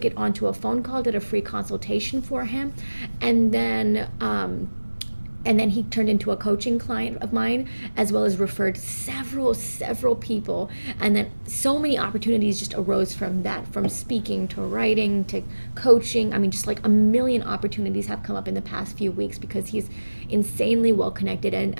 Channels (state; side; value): inverted; both; correlation -1.00